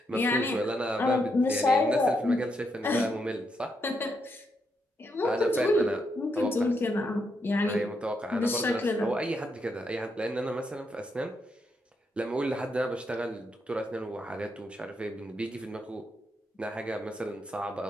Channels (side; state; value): both; normal; correlation 0.80